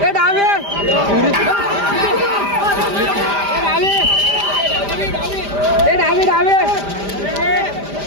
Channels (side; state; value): left; late; 5.0 ms